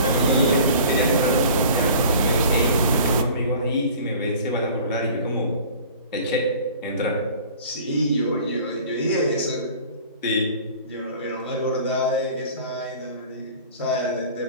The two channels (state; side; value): inverted; both; correlation -0.45